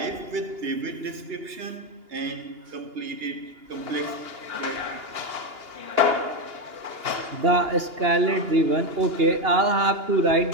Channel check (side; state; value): left; late; 2.8 ms